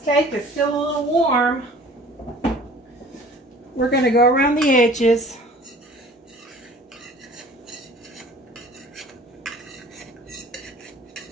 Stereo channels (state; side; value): normal; both; correlation 0.48